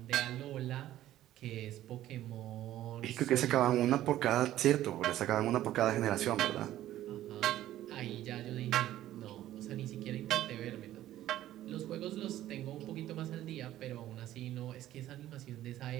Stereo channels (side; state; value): left; quieter; 13.6 dB